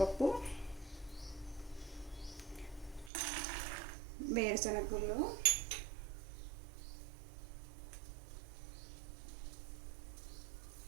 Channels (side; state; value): left; drops out; at 3.1 s